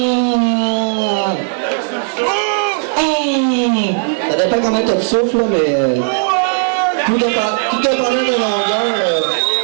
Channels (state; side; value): silent; left; 58 dB below the other